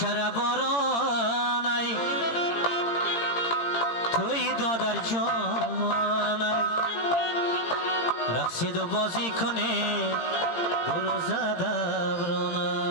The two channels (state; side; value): late; right; 17 ms